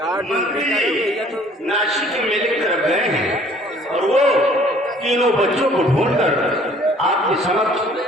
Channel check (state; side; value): normal; both; correlation 0.56